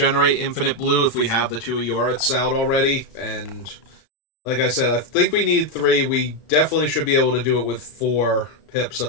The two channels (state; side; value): late; right; 34 ms